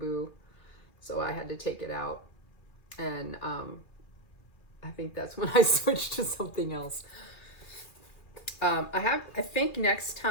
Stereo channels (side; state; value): right; late; 2.4 ms